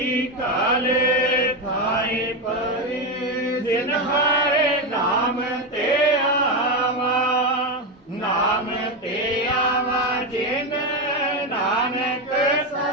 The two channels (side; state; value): both; normal; correlation 0.12